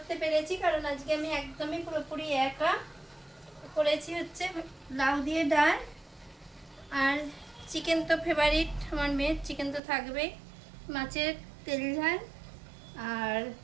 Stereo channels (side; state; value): left; drops out; at 9.8 s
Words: পেরেছি, কারণ আজকে আমি একদমই পুরোপুরি একা করেছি। হচ্ছে লাউ দিয়ে ডাল, আর চিকেন তো ফেভারিট আমার মেয়ের, চিকেন তো থাকবেই, মাছের তেল ঝাল আর